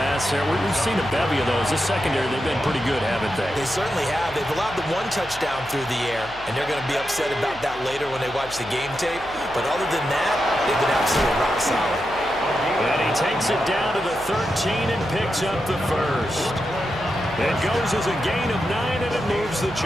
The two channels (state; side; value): noise; left; hum, 19 dB below the sound